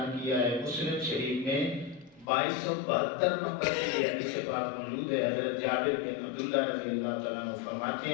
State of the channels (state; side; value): drops out; right; at 2.2 s